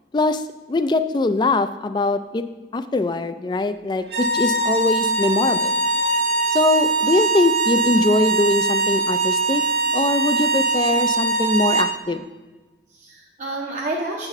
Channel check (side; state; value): both; normal; correlation 0.07